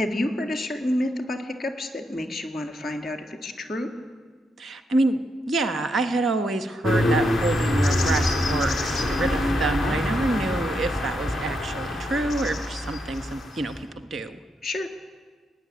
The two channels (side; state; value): both; normal; correlation 0.81